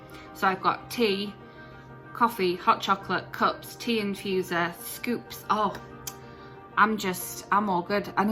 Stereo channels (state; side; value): identical; both; correlation 1.00